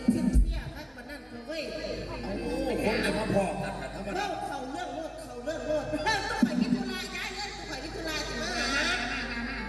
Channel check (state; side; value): identical; both; correlation 1.00